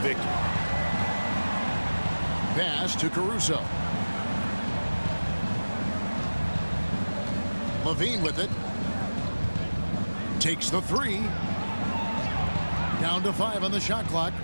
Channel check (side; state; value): both; inverted; correlation -1.00